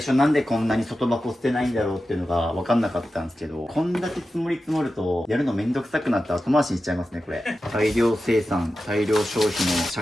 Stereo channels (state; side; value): normal; both; correlation 0.92